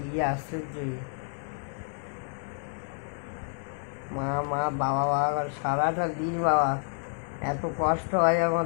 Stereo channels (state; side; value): silent; right; 58 dB below the other